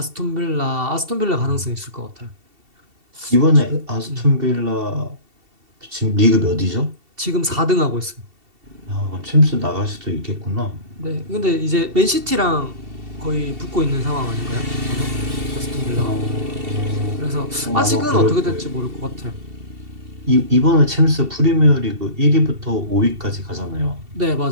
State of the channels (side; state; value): left; late; 2.7 ms